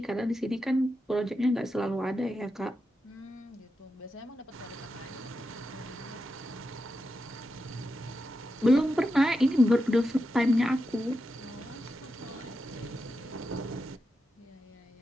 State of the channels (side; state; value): both; normal; correlation 0.88